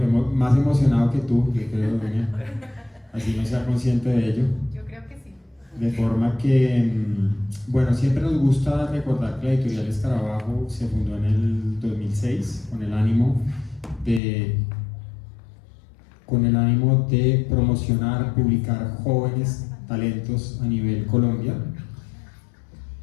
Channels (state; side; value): drops out; right; at 14.2 s